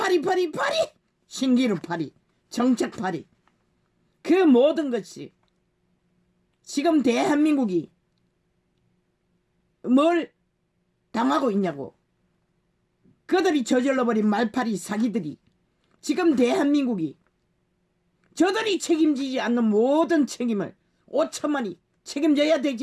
신기루 파리 정책 파리 그 모든 것이 지금 대한민국이 뭘 당하고 있냐고. 그들이 저질러버린 말파리 사기들이 지금 대한민국이 저들이 책임지지 않는 모든 책임을 5천만이 책임져야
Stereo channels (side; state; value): both; identical; correlation 1.00